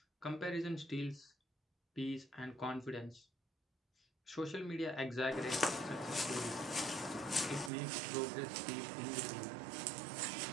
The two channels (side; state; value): left; drops out; at 7.7 s